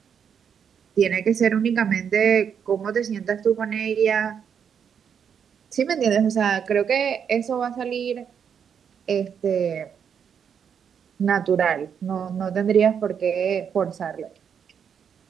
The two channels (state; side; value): quieter; left; 7.6 dB